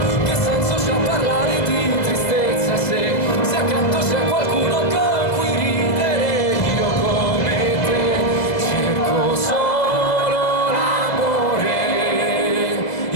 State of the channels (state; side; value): late; right; 2.0 ms